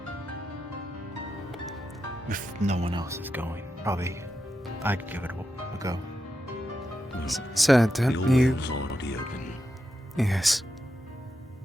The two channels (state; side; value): normal; both; correlation 0.87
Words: If no one else is going, probably I'd give it a go. Sir, don't Your you... wind's already open. Yes.